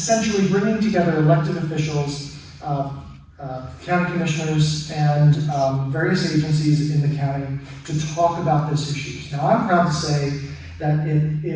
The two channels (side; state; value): both; identical; correlation 1.00